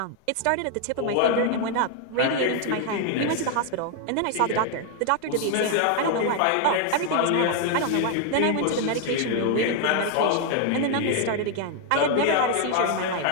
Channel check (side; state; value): both; different; correlation 0.00